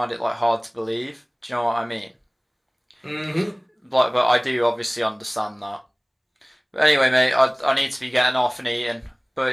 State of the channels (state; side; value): identical; both; correlation 1.00